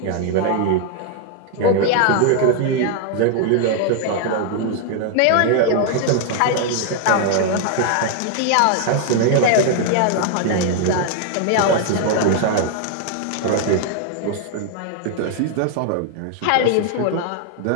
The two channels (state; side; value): different; both; correlation 0.00